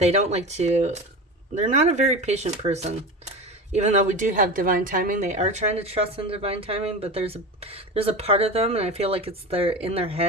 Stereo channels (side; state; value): both; normal; correlation 0.28